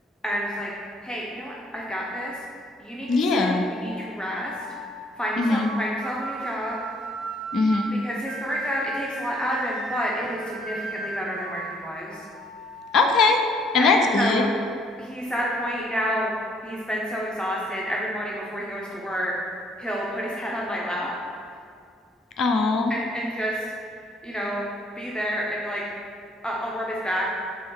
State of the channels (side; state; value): both; normal; correlation 0.64